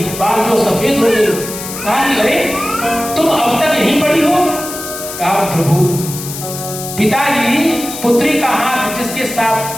बाल जो सफेद हो गए। कहा कि अरे तुम अब तक यहीं पड़ी हो? कहा प्रभु, पिताजी पुत्री का हाथ जिसके साथ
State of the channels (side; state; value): left; noise; hiss, 9 dB below the sound